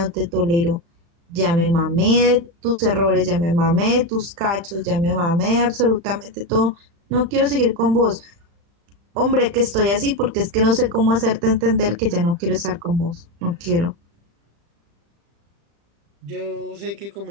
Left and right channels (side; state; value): left; late; 35 ms